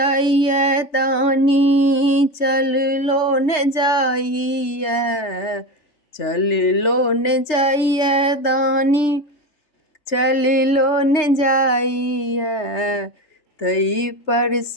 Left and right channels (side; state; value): right; late; 3.3 ms